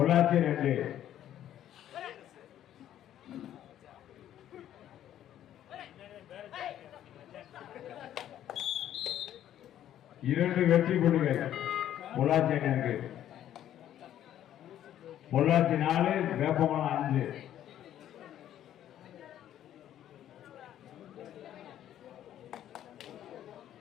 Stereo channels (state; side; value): quieter; right; 11.4 dB